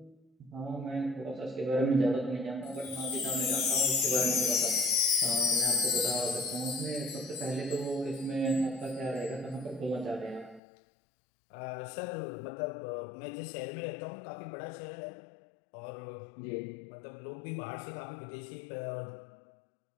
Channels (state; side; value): drops out; right; at 10.6 s